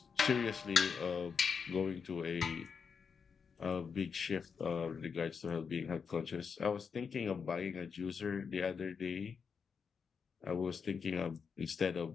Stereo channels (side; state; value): right; quieter; 6.1 dB